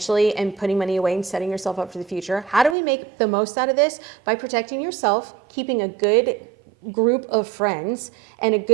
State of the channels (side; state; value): left; drops out; at 2.8 s